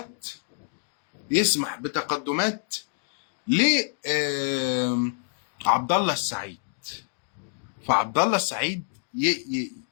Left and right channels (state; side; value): silent; right; 60 dB below the other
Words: يسمح بتقدمات ليه عبد الله السعيد. فعبد الله السعيد